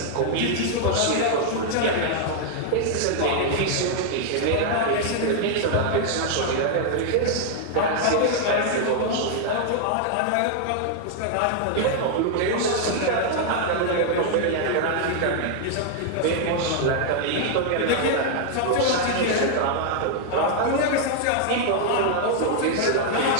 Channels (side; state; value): both; different; correlation 0.00